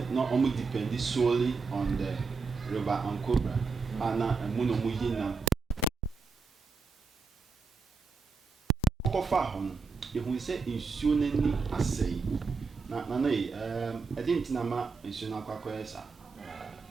na ɔmo depend solely on the river Ankobra ana ɛmu na ɔmo yi nam kɔfa hɔ no yɛhu sɛ nsuo n'ani asɛe na yi ɛde nti na ma nsuo no akɔyɛ saa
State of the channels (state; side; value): quieter; left; 4.7 dB